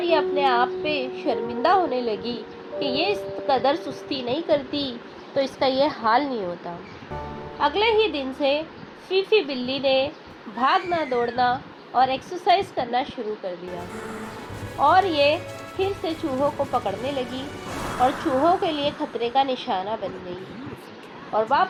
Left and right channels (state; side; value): identical; both; correlation 1.00